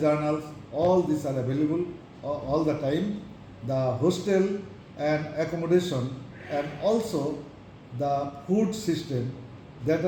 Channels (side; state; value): both; identical; correlation 1.00